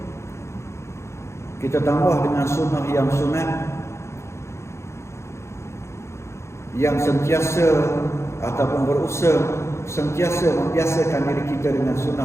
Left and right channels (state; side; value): late; right; 0.13 ms